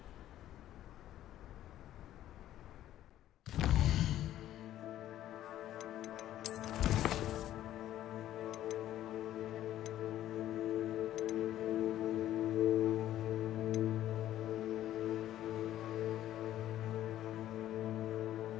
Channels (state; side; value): quieter; right; 12.8 dB